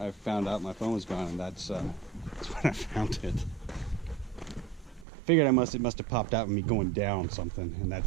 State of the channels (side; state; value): left; drops out; at 5.1 s